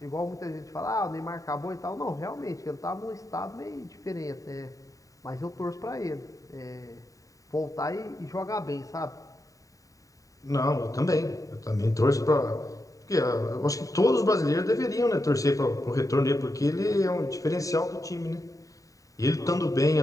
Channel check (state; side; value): late; right; 0.16 ms